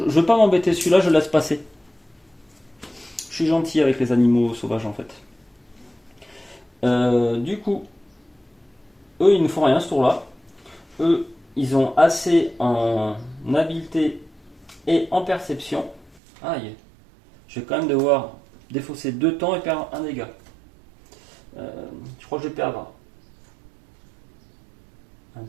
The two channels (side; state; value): left; drops out; at 16.2 s